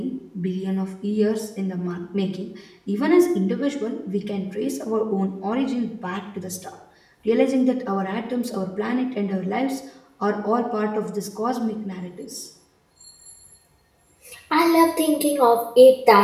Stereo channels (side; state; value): both; identical; correlation 1.00